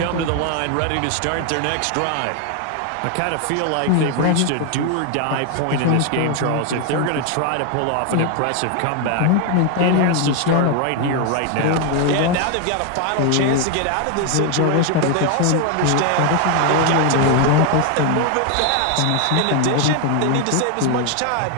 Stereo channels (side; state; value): both; different; correlation 0.01